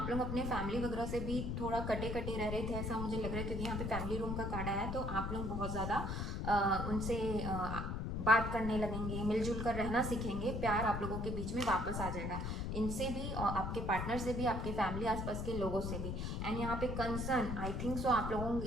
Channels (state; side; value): noise; left; rumble, 2 dB below the sound